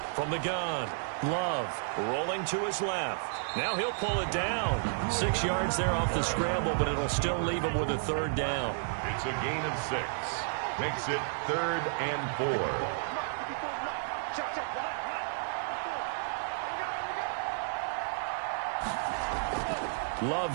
From the gun, Love rolling to his left. Now he'll pull it down. 6 yards there off the scramble, but it'll still leave him with a third down. It's a gain of 6. Makes it third and 4.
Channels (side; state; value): left; silent; digital silence